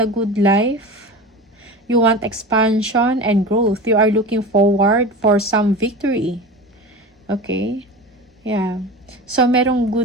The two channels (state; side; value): normal; both; correlation 0.30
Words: the good life. You want expansion and growth. You are looking forward for some victory. Okay? Yeah. So, merong